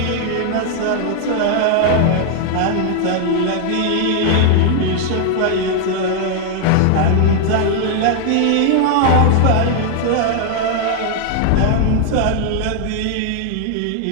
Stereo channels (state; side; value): different; both; correlation 0.00